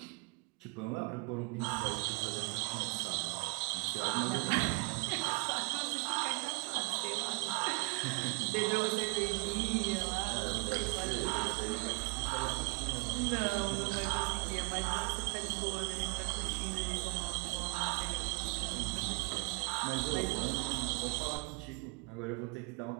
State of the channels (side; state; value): left; quieter; 29.7 dB